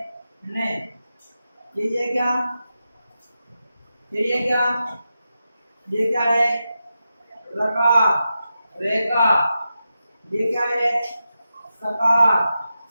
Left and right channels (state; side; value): inverted; both; correlation -0.90